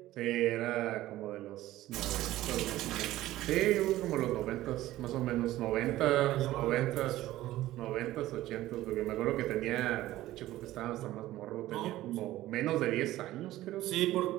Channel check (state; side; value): quieter; left; 15.5 dB